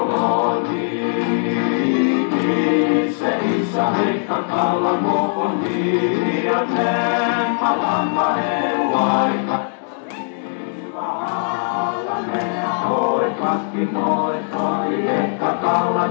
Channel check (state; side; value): silent; right; digital silence